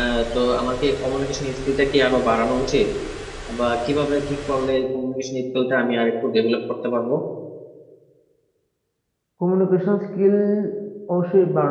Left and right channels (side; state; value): both; identical; correlation 1.00